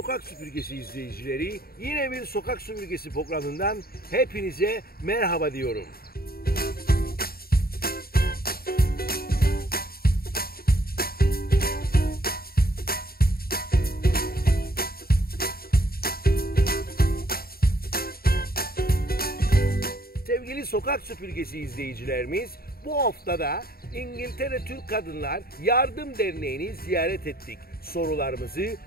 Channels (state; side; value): late; right; 0.44 ms